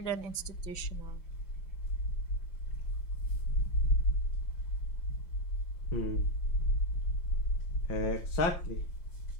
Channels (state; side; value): late; right; 5.8 ms